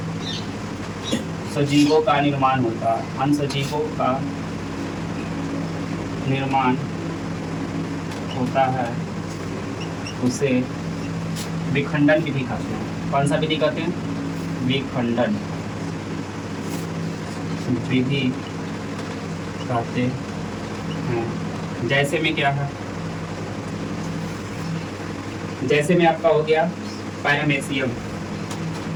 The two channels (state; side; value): identical; both; correlation 1.00